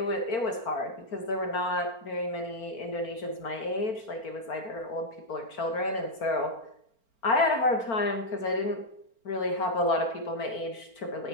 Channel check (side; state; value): right; late; 4.4 ms